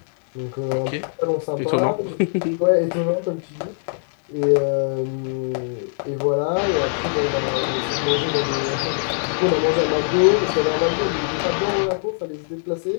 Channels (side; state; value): right; silent; 64 dB below the other